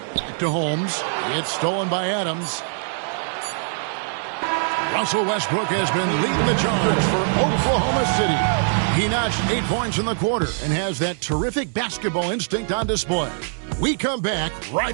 Back to Holmes. It's stolen by Adams. Russell Westbrook has been leading the charge for Oklahoma City. He notched 8 points in the quarter and has that terrific basketball instinct on display. We come back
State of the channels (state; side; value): silent; left; digital silence